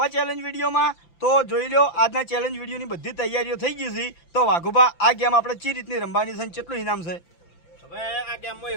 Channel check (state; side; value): late; right; 5.9 ms